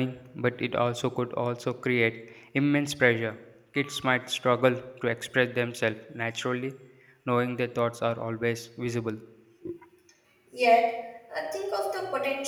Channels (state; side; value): identical; both; correlation 1.00